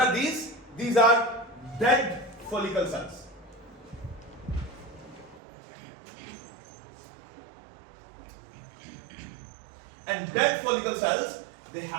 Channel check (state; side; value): drops out; left; at 5.4 s